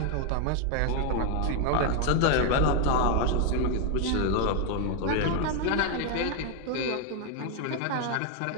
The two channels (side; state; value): both; different; correlation 0.00